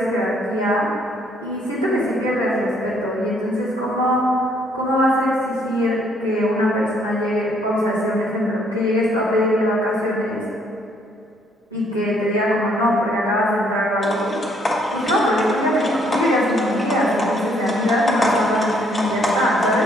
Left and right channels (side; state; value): both; normal; correlation 0.67